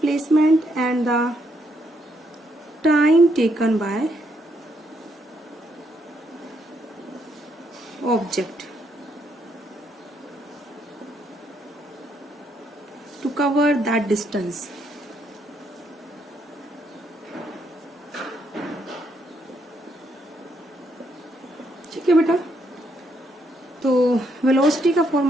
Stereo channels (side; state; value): both; normal; correlation 0.75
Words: and the time taken by object to cover that distance. ठीक है बेटा, तो वेलोसिटी का